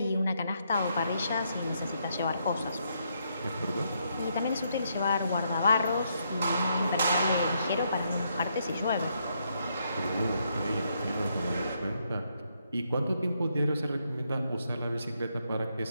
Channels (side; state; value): both; inverted; correlation -0.77